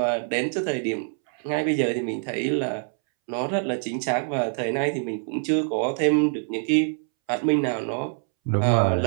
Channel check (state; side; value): silent; left; 62 dB below the other